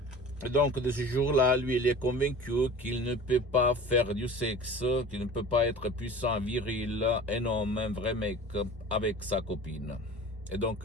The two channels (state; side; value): normal; both; correlation 0.40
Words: Donc de ce jour-là, lui, il est convaincu qu'il ne peut pas faire du sexe, qu'il ne peut pas être puissant, viril, un homme, un vrai mec avec sa copine. Et donc,